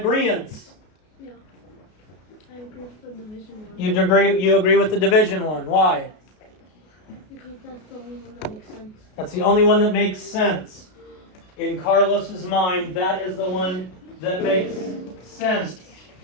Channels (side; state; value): right; late; 33 ms